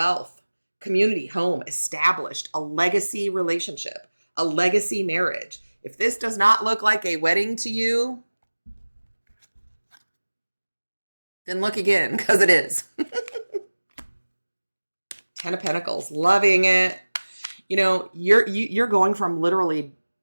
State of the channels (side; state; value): both; inverted; correlation -1.00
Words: community, home, established, a legacy relationship, a legacy marriage. If this does not look like a wedding to you, then look again, because it is. Ten of Pentacles, loving it. You know, you're going from literally